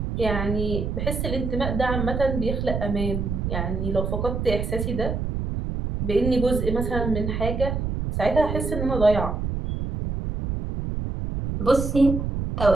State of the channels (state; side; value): noise; right; rumble, 2 dB below the sound